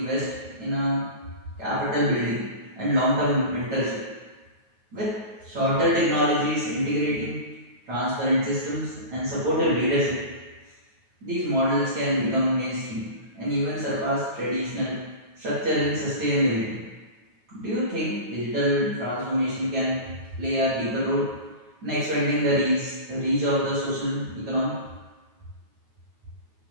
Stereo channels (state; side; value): late; left; 9.3 ms